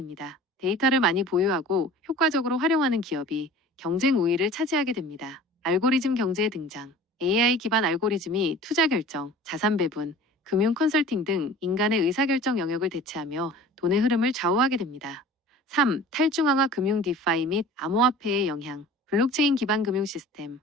데이터를 많이 보유하고 효과적으로 활용하는 기업이 경쟁 우위를 차지하게 됩니다. 알고리즘 경제의 등장. AI 기반 알고리즘이 투자 결정, 자산 배분, 금융 컨설팅 등 인간의 의사결정 영역을 대체하며 돈의 흐름을 좌우하게 됩니다. 3. 탈중앙화 금융 디파이 및 암호화폐의 영향. 블록체인 기반 금융 시스템.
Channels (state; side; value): normal; both; correlation 0.43